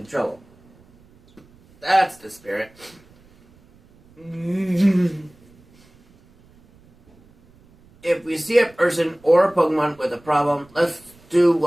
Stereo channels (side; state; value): right; noise; rumble, 29 dB below the sound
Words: trouble. That's the spirit. If we see a person or a Pokemon with a problem, let's do